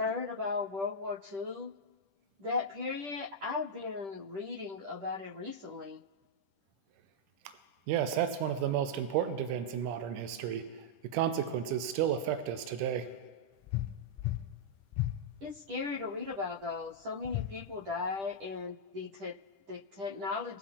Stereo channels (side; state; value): left; late; 10 ms